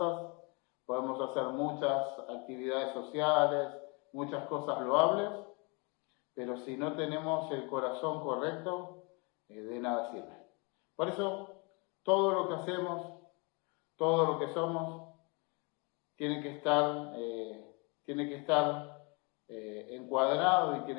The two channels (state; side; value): quieter; right; 31.3 dB